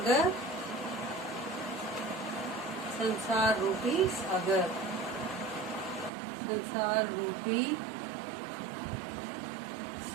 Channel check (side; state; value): left; drops out; at 6.1 s